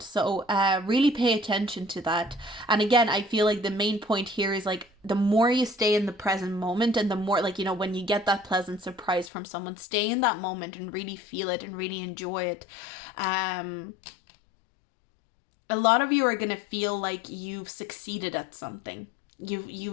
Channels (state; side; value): drops out; right; at 9.3 s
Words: So really pay attention to that. And again, I feel like the main point here is like the more you stay in the present moment and the more like, you know, when you get that pleasant surprise from someone, stay in that moment and really feel it and really enjoy it. A lot of you are gonna feel like you've succeeded at something.